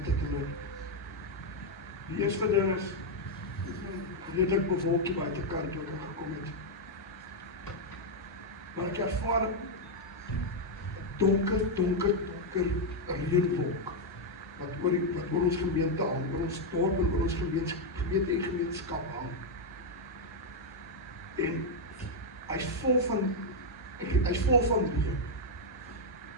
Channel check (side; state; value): both; normal; correlation 0.00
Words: het en loop. Die eerste ding is redelik bewolkie buitekant toe ek gekom het. Maar ek ervaar 'n donker reënwolk wat oor ons gemeente hang, oor ons dorp en oor ons gemeente en gemeenskap hang. En hy's vol van reën.